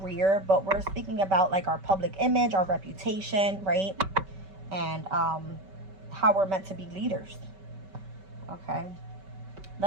but we're speaking about like our public image, our reputation, right? And how we're meant to be leaders. Okay,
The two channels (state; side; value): late; left; 5.2 ms